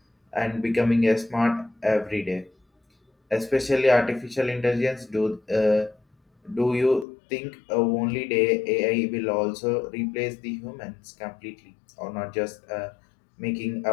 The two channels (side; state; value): right; drops out; at 7.1 s